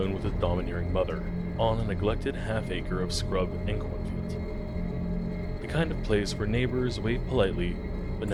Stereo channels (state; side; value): identical; both; correlation 1.00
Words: with his domineering mother on a neglected half-acre of scrub and cornfields. The kind of place where neighbors waved politely but